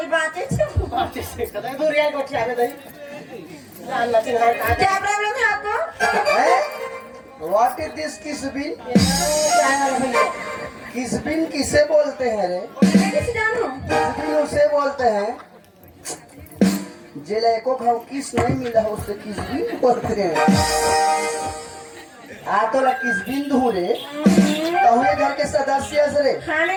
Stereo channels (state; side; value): identical; both; correlation 1.00